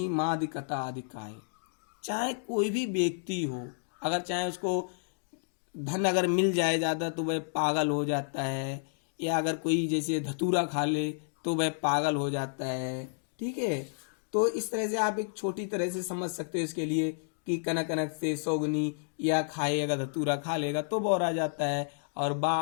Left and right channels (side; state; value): right; silent; digital silence